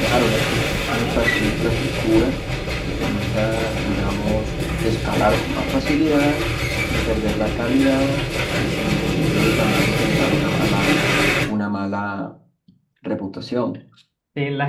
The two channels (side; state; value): both; identical; correlation 1.00